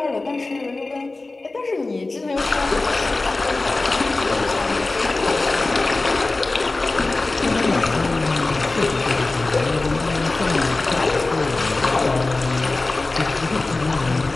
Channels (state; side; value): quieter; right; 3.2 dB